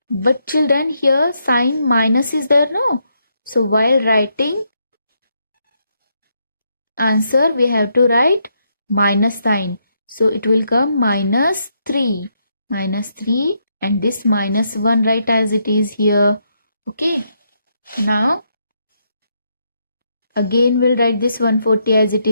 But children, here sign minus is there, no? So while writing answer we have to write minus sign. So it will come minus 3. Minus 3, and this minus 1 write as it is here. Okay. Now again we'll write this 140 as it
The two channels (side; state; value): both; inverted; correlation -0.78